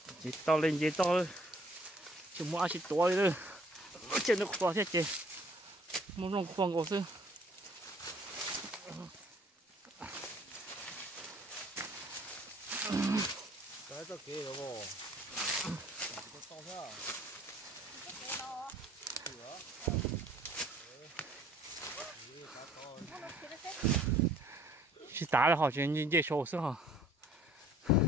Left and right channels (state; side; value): normal; both; correlation 0.58